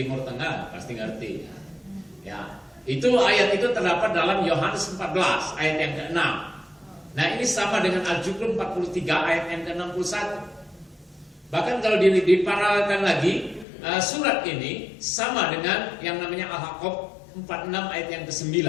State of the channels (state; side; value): drops out; right; at 13.7 s